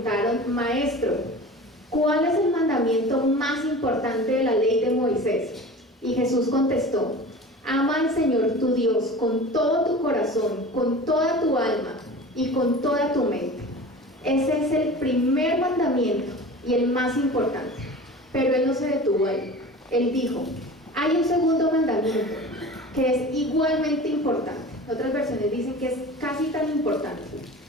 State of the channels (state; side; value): normal; both; correlation 0.37